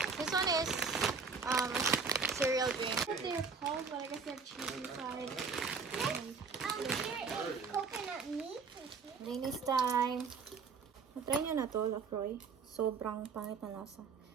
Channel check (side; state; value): left; quieter; 5.2 dB